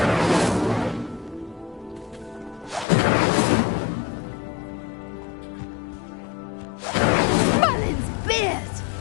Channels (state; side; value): drops out; right; at 2.9 s